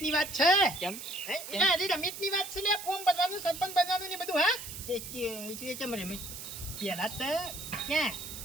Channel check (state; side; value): noise; right; hiss, 10 dB below the sound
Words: વાત છે. કેમ રમેશની વાત છે ને ફોર્મ ભરવાનું સરપંચ બનવાનું ને બધું. હા એટલે કેમ રમે પેલા તો ક્યાં